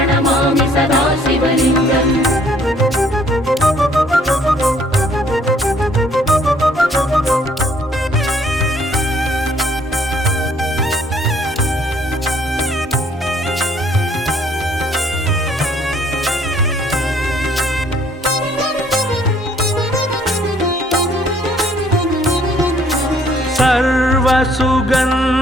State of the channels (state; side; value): normal; both; correlation 0.62